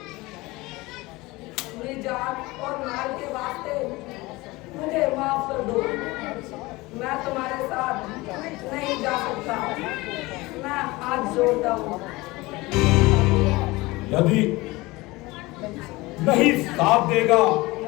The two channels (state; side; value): quieter; right; 21.5 dB